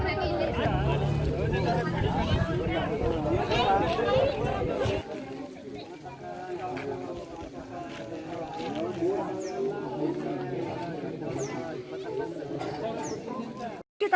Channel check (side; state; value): both; identical; correlation 1.00